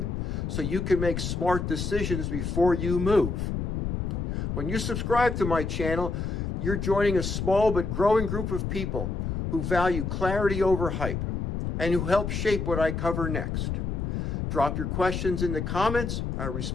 so you can make smart decisions before you move. When you subscribe to my channel, you're joining a small but growing group of people who value clarity over hype and who help shape what I cover next. Drop your questions in the comments. I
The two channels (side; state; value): left; noise; rumble, 2 dB below the sound